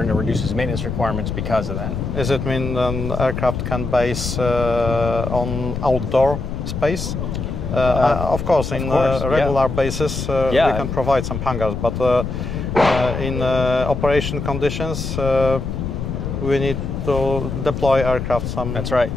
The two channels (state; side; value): noise; left; rumble, 4 dB below the sound